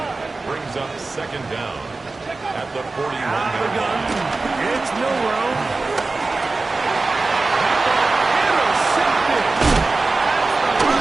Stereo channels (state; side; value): quieter; left; 3.6 dB